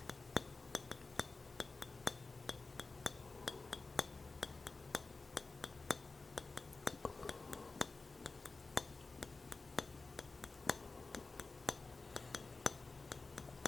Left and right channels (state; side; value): quieter; right; 3.8 dB